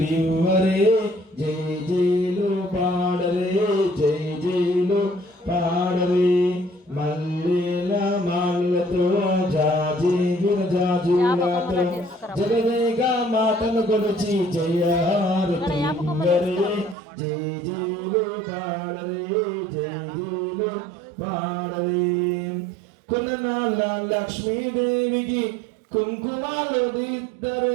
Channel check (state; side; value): drops out; left; at 16.9 s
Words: జై జైలు పాడరే జై జైలు పాడరే మల్లెల మాలతో జాజి విరజాజులతో జగదేగా మాటను కొలిచి జయారతి లివ్వరే జై జైలు పాడరే జై జైలు పాడరే కులనాల లక్ష్మీదేవికి కుంకుమాలు